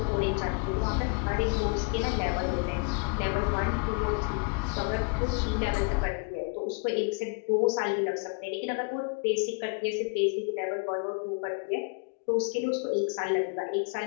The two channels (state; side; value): quieter; right; 35.7 dB